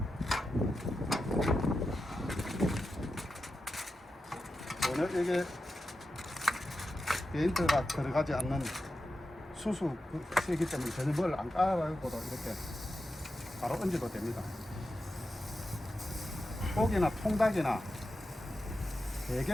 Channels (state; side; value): normal; both; correlation 0.90